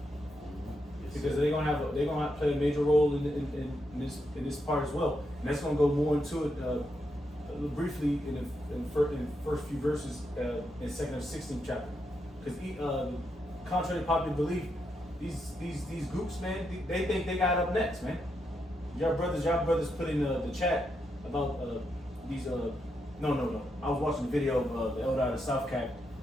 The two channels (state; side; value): normal; both; correlation 0.82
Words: because they're gonna have to play a major role in this part as well. And that's gonna go more into it briefly in the first few verses in 2 Kings 16 chapter, because contrary to popular belief, these groups, man, they think they got up next, man. Y'all brothers put in the chat about these. No. I was watching the video of the elder out of South Cap